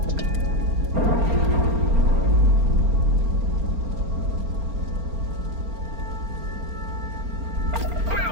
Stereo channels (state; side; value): late; left; 4.3 ms